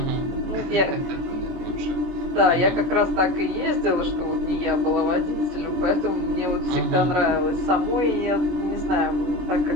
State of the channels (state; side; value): late; left; 23 ms